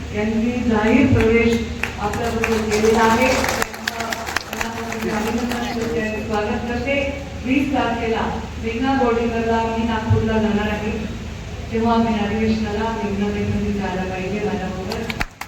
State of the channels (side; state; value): both; identical; correlation 1.00